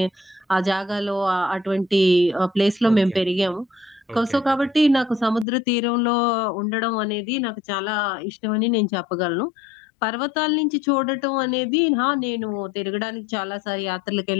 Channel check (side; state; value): right; drops out; at 5.5 s